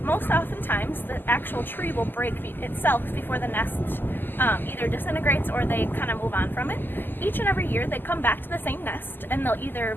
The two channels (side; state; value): right; late; 0.092 ms